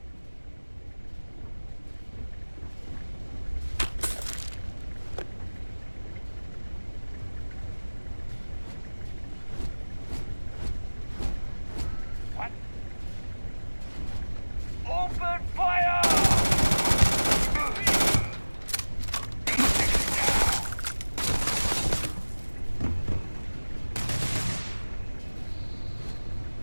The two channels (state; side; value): inverted; both; correlation -1.00